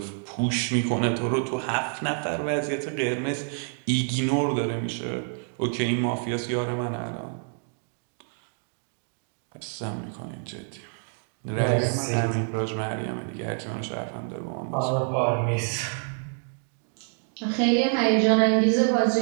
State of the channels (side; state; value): left; silent; 55 dB below the other